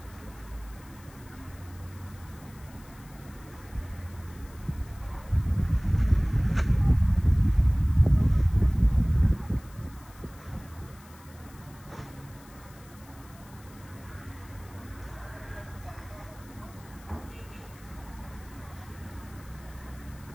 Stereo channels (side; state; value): left; noise; hiss, 24 dB below the sound